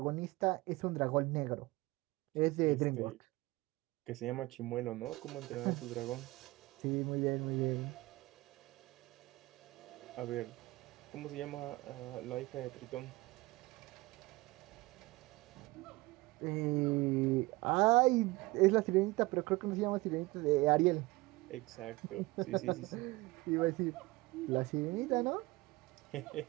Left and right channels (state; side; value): quieter; left; 21.7 dB